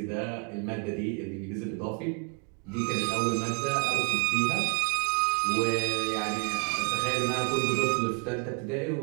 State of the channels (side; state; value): left; quieter; 36.0 dB